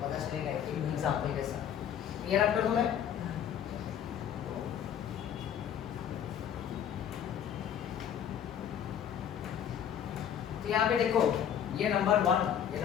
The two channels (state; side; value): quieter; right; 9.1 dB